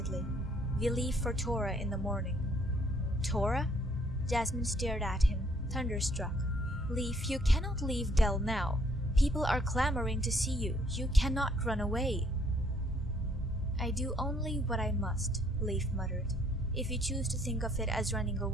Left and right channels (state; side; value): normal; both; correlation 0.65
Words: "We leave for Tora in the morning." "Tora?" Jasmine stared at him, thunderstruck. "Lief, you cannot leave Del now. People are clamoring to see you. You cannot run away." "I do only what I must," Lief muttered. "If you choose to think of it as running